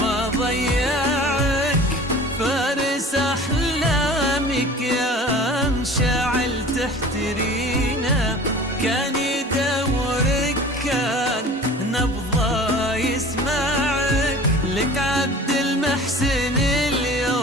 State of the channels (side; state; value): both; normal; correlation 0.42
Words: ما ضيعك. فارس أحلامك يا مشاعل تحترينا، كان يدورك كان نبضه يسمعك. لك عبد محسن